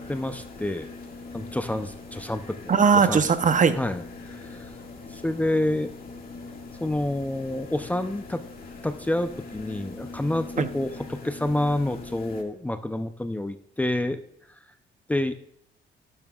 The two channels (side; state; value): both; normal; correlation 0.61